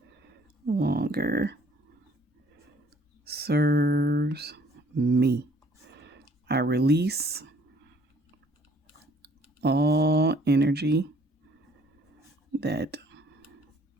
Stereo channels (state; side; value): normal; both; correlation 0.59